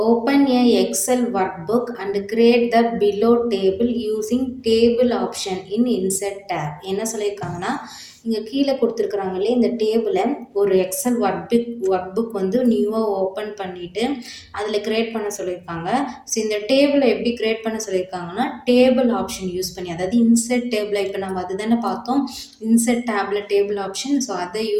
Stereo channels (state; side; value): identical; both; correlation 1.00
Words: open a Excel workbook and create the below table using table option in insert tab. என்ன சொல்லியிருக்காங்கன்னா, இங்கே கீழே கொடுத்துருக்குறாங்க இல்லையா, இந்த டேபிளை ஒரு எக்ஸல் ஒர்க் புக் வந்து நியூவாக ஓப்பன் பண்ணிவிட்டு அதில் க்ரியேட் பண்ண சொல்லியிருக்காங்க. ஸோ இந்த டேபிளை எப்படி க்ரியேட் பண்ண சொல்லியிருக்காங்கன்னா, டேபிள் ஆப்ஷன் யூஸ் பண்ணி, அதாவது இன்சர்ட் டேபிளை இப்போ நம்ம அது தானே பார்த்தோம், insert table table option. So அதை